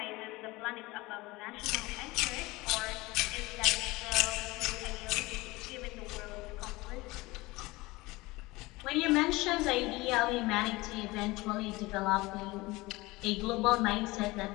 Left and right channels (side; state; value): right; quieter; 21.5 dB